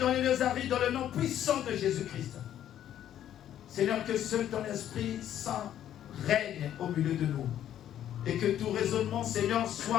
les lieux arides dans le nom puissant de Jésus-Christ. Seigneur, que seul ton Esprit Saint règne au milieu de nous. Et que tout raisonnement, Seigneur,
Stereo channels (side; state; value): right; quieter; 11.0 dB